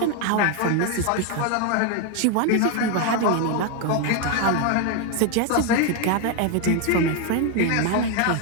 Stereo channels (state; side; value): different; both; correlation 0.01